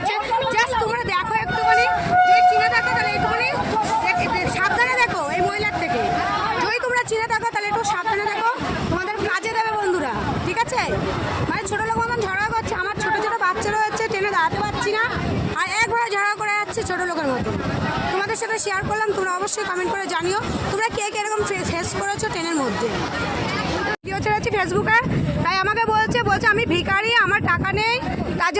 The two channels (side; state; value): both; identical; correlation 1.00